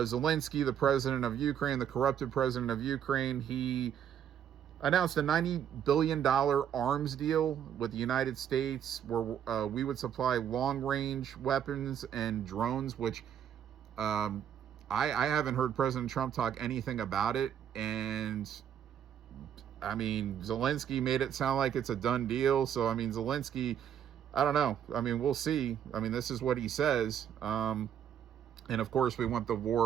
the president of Ukraine, the corrupted president of Ukraine, he announced a $90 billion arms deal with the United States where we would supply long-range weapons and drones, which I haven't heard President Trump talk anything about it. And I mean, Zelensky made it sound like it's a done deal. So, I mean, Zelensky, I don't know. I mean, we'll see. I mean, this is what he says. And of course, we want the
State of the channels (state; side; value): quieter; left; 9.3 dB